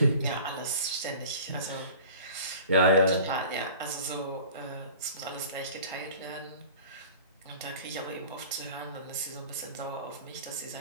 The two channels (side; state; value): both; inverted; correlation -0.42